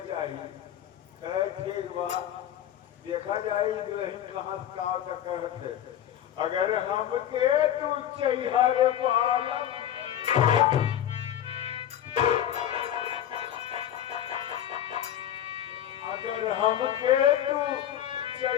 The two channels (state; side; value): quieter; right; 10.9 dB